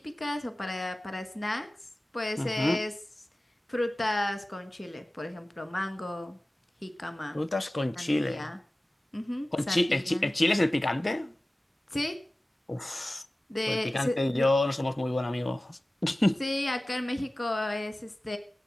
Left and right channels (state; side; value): normal; both; correlation 0.97